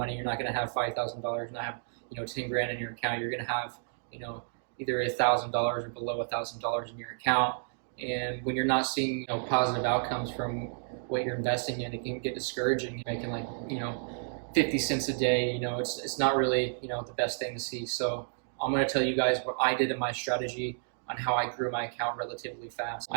You're not going to have $5,000, not have 10 grand in your account. You're going to have either $1,000 or below $1,000 in your account. And when you're not seeing positive outcomes from what you're investing in, it can get discouraging. You're making 50 cents a day. It's not really the best thing to see. So I'm going to tell you guys what I did in my strategy on how I grew my account relatively fast.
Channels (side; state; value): left; silent; digital silence